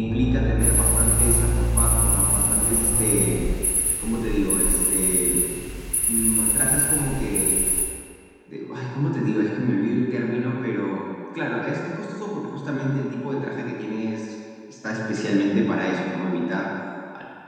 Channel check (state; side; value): identical; both; correlation 1.00